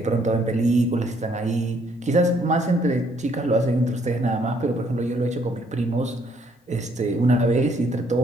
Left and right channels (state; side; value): normal; both; correlation 0.67